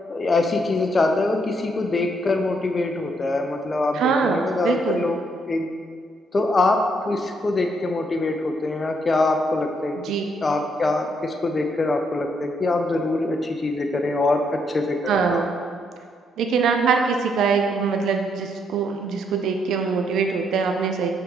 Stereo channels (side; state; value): both; normal; correlation 0.74